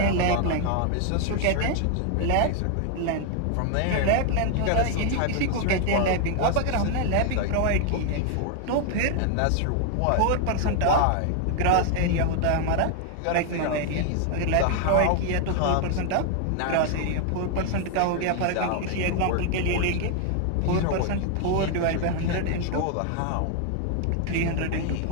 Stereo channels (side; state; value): both; different; correlation 0.00